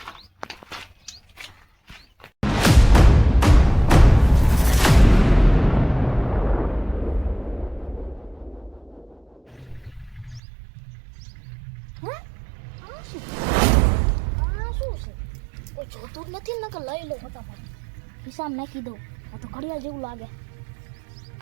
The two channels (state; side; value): drops out; left; at 10.4 s